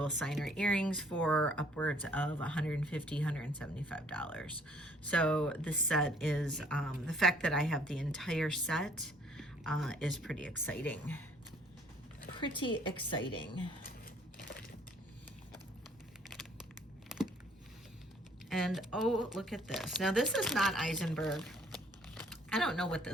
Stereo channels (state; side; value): normal; both; correlation 0.60